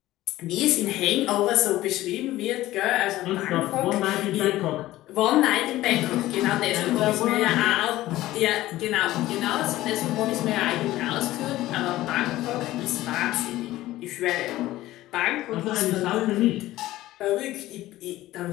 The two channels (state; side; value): quieter; right; 16.0 dB